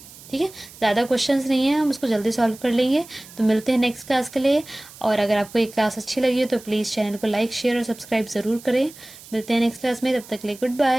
ठीक है, ज़्यादा क्वेश्चंस नहीं है, हम उसको जल्दी सॉल्व कर लेंगे। तो मिलते हैं नेक्स्ट क्लास के लिए। और अगर आपको ये क्लास अच्छी लगी हो तो प्लीज़ चैनल को लाइक शेयर और सब्सक्राइब ज़रूर करें। मिलते हैं नेक्स्ट क्लास में, तब तक के लिए गुड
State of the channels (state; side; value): noise; right; hiss, 19 dB below the sound